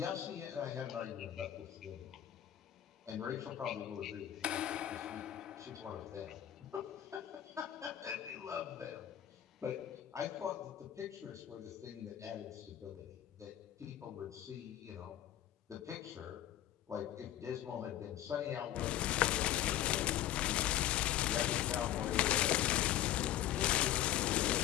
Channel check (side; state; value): right; quieter; 12.1 dB